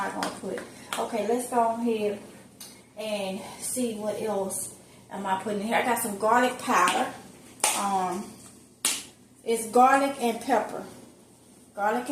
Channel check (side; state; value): both; identical; correlation 1.00